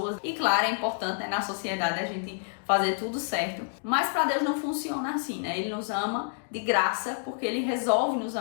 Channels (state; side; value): silent; right; digital silence